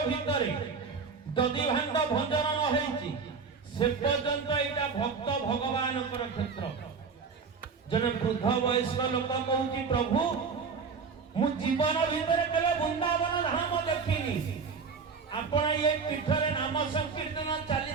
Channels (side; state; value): left; quieter; 5.3 dB